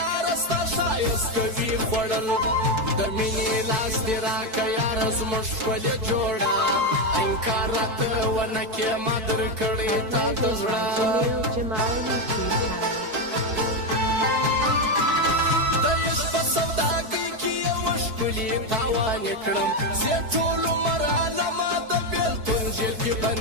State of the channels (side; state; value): left; late; 4.6 ms